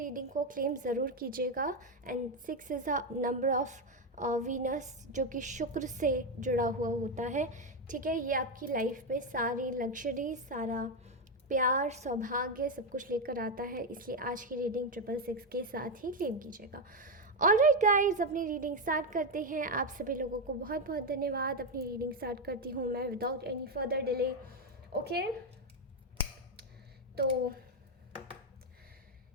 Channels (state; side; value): normal; both; correlation 0.07